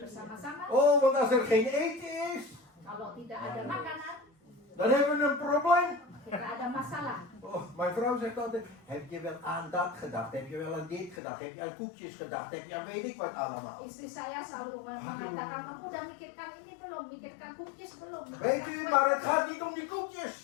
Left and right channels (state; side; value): drops out; right; at 11.2 s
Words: bersama-sama. Oh, want als er geen eten is, Kalau tidak ada makanan, dan hebben we een probleem. kita ada masalah. Oh, mijn vrouw zegt altijd, heb je wel aan dat gedacht? Heb je wel aan dit gedacht? Heb je aan koekjes gedacht? Heb je aan weet ik wat allemaal? Istri saya selalu mengatakan, kamu udah mikirkan ini belum? Mikirkan cookies belum? Weet u, maar het gaat niet om die